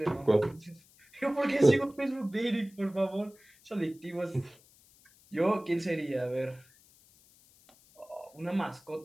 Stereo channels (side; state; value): left; noise; hiss, 28 dB below the sound